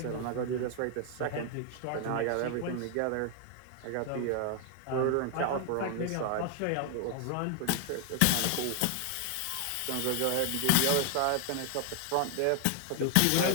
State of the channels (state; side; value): different; both; correlation 0.00